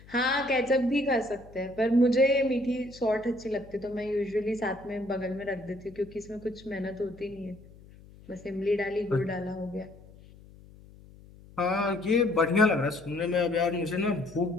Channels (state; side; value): noise; left; hum, 22 dB below the sound